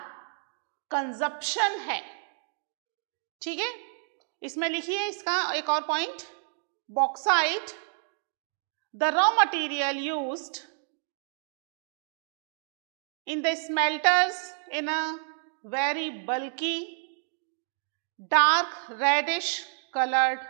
कंजप्शन है। ठीक है, इसमें लिखिए इसका एक और point, bauxite, the raw material used in the smelters in a very bulky dark reddish coloured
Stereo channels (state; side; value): silent; left; 58 dB below the other